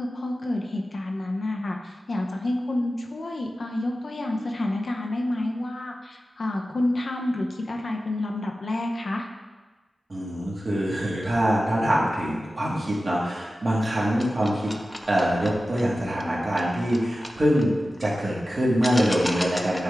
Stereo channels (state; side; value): normal; both; correlation 0.94